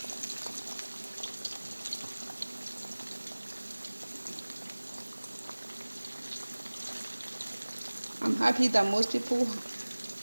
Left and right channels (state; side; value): inverted; both; correlation -1.00